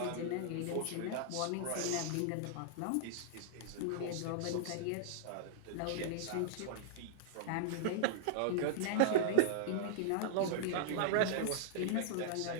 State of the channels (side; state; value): both; different; correlation -0.01